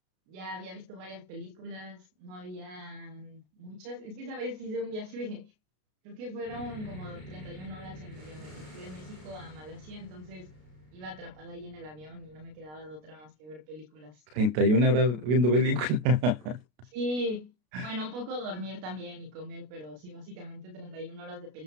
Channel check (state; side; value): late; left; 33 ms